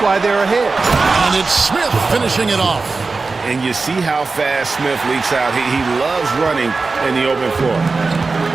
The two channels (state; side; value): quieter; left; 4.0 dB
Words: they're ahead. And it's Smith finishing it off. And you see how fast Smith leaks out. He loves running in the open floor.